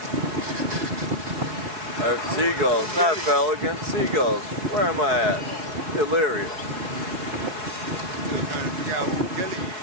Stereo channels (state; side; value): late; left; 4.7 ms